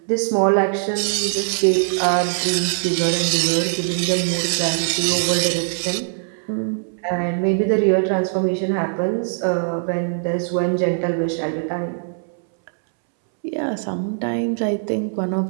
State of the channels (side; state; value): left; silent; 65 dB below the other